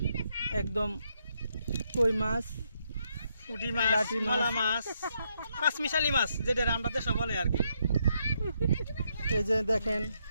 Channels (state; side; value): inverted; both; correlation -0.77